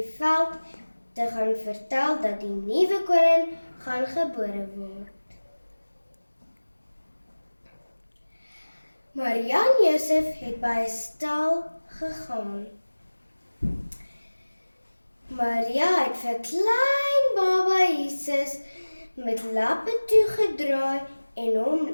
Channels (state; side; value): inverted; both; correlation -1.00